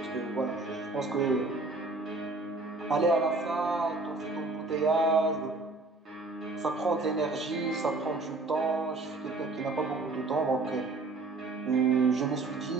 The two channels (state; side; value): quieter; left; 3.4 dB